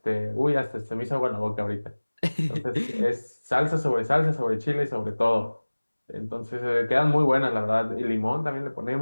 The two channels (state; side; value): inverted; both; correlation -1.00